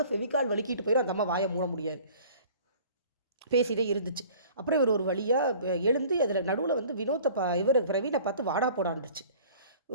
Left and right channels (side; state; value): both; inverted; correlation -0.48